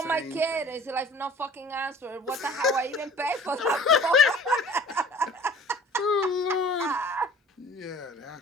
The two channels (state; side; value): normal; both; correlation 0.48